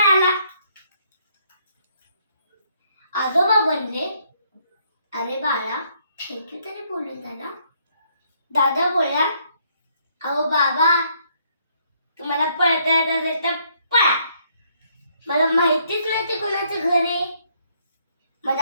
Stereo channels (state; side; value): inverted; both; correlation -0.69